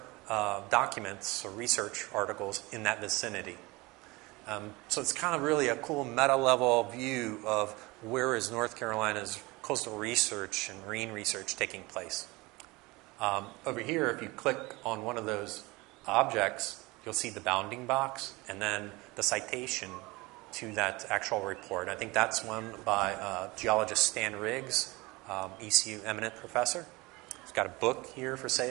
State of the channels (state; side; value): quieter; left; 23.1 dB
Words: documents or research articles in that vicinity. So it's kind of really a cool meta-level view of where is North Carolina's coastal research and marine research taking place. Over here, if you click on one of those objects, you'll see the bounding box and then the citation to that actual report. I think that's one by geologist Stan Riggs, ECU eminent professor. He's got a book here for